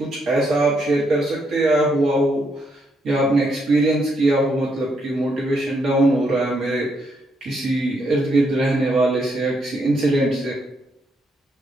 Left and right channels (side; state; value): both; normal; correlation 0.76